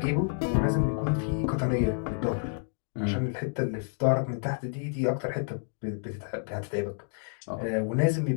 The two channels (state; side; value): silent; right; digital silence